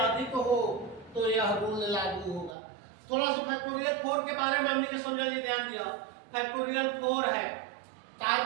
हो तो यह रूल लागू होगा। थोड़ा सा फैक्टोरियल 4 के बारे में हमने समझा लिया, ध्यान दिया। फैक्टोरियल 4 है, तार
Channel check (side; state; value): left; drops out; at 2.6 s